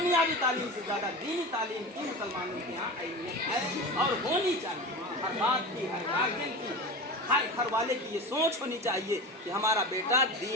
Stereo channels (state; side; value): normal; both; correlation 0.29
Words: तालीम से ज़्यादा दीनी तालीम की मुसलमानों के यहाँ अहमियत है और होनी चाहिए। हर बात की, हर गार्जियन की, हर घर वाले की ये सोच होनी चाहिए कि हमारा बेटा